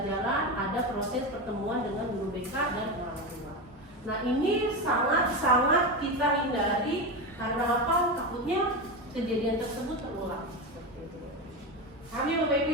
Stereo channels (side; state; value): both; normal; correlation 0.18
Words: ada proses pertemuan dengan guru BK dan orang tua. Nah ini sangat-sangat kita hindari karena apa? Takutnya kejadian tersebut terulang. Kami Bapak